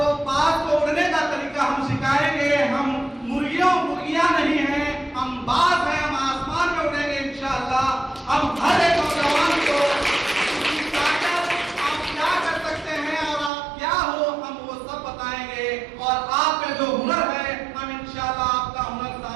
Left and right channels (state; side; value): drops out; left; at 13.5 s